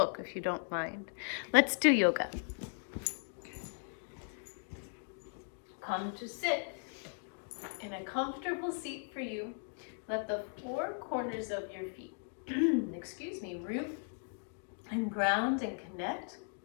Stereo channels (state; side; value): silent; right; 53 dB below the other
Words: if you don't mind. Let's do yoga. Come to sit in a comfortable seat for you. Let the four corners of your feet, root and ground and connect.